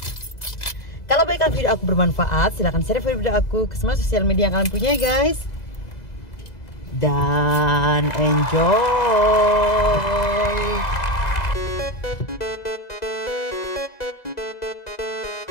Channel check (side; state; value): right; late; 2.0 ms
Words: Kalau baikkan video aku bermanfaat, silahkan share video aku ke semua sosial media yang kalian punya guys. Dan enjoy.